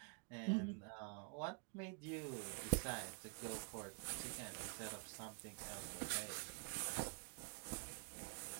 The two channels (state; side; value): quieter; left; 38.6 dB